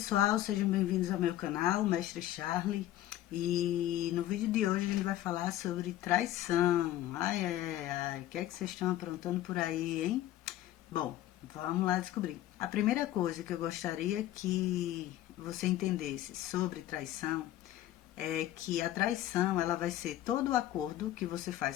sejam bem-vindos ao meu canal, Mestre Charlie. E no vídeo de hoje a gente vai falar sobre traição. Ai, o que é que vocês estão aprontando por aí, hein? Bom, vamos lá descobrir. A primeira coisa que eu gostaria que você entendesse sobre traição é que a traição ela vai ser todo o acordo que você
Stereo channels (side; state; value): right; quieter; 13.6 dB